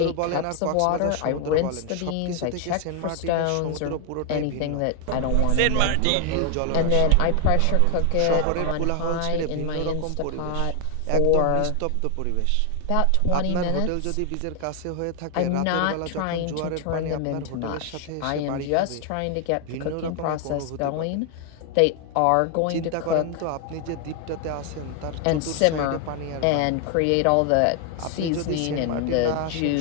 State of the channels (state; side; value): different; both; correlation 0.00